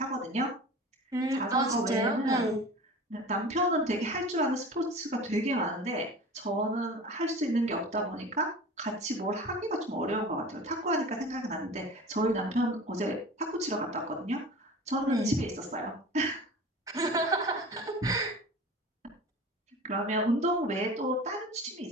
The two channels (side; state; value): both; normal; correlation 0.37